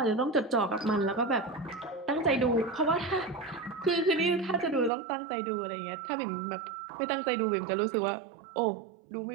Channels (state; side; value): drops out; left; at 4.9 s